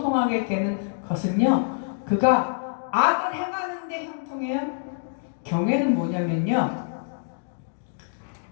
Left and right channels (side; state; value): right; silent; digital silence